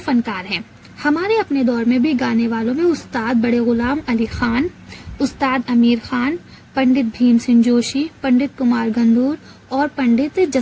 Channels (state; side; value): identical; both; correlation 1.00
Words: फनकार हैं। हमारे अपने दौर में भी गाने वालों में उस्ताद बड़े गुलाम अली खान, उस्ताद अमीर खान, पंडित भीम सिंह जोशी, पंडित कुमार गंधूर और पंडित